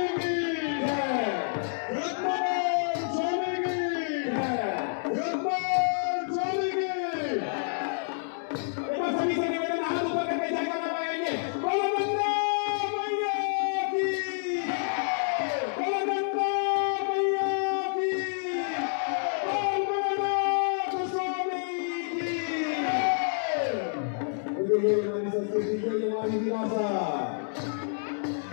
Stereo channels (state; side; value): silent; right; 59 dB below the other